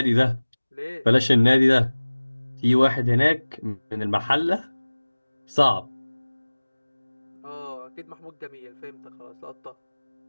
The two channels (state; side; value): inverted; both; correlation -1.00